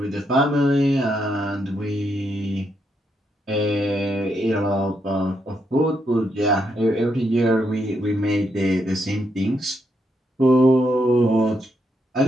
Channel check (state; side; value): normal; both; correlation 0.79